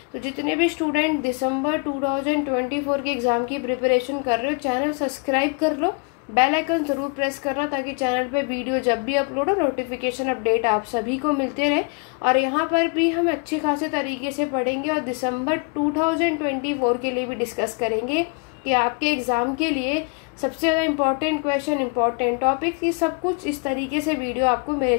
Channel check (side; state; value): right; quieter; 34.1 dB